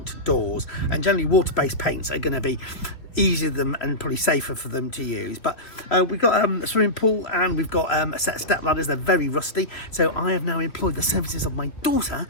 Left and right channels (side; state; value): right; late; 3.0 ms